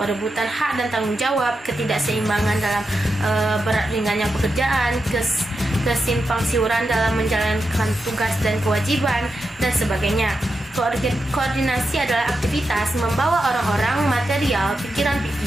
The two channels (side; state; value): both; normal; correlation 0.88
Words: hak dan tanggung jawab, ketidakseimbangan dalam berat ringannya pekerjaan, kesimpang siuran dalam menjalankan tugas dan kewajiban, dan sebagainya. Koordinasi adalah aktivitas membawa orang-orang, material,